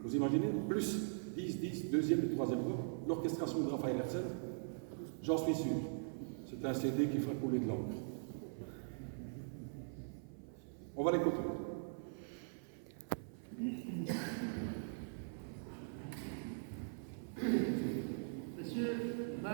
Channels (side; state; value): left; silent; 50 dB below the other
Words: vous imaginez, plus 10, deuxième et troisième voix, l'orchestration de Raphaël Hersen, j'en suis sûr. C'est un CD qui fera couler de l'encre. On va l'écouter. Monsieur,